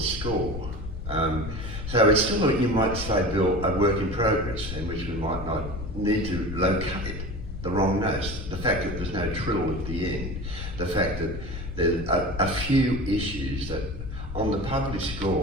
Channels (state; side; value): noise; left; rumble, 8 dB below the sound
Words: score. So it's still, you might say, Bill, a work in progress, in which we might not need to locate the wrong notes. The fact that there's no trill at the end, the fact that there's a few issues that on the published